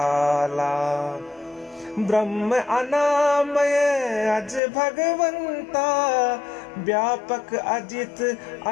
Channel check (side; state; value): right; drops out; at 4.6 s